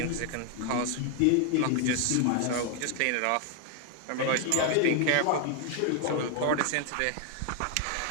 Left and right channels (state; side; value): different; both; correlation 0.01